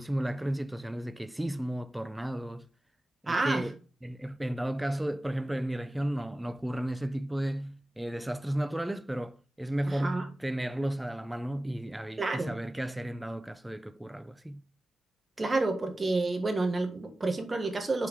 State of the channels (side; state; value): both; normal; correlation 0.96